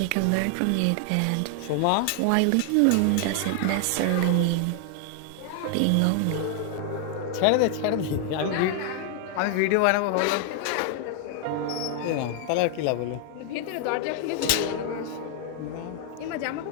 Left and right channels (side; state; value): both; different; correlation 0.00